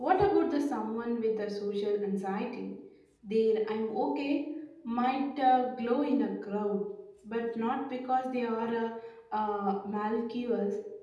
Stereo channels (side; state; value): both; identical; correlation 1.00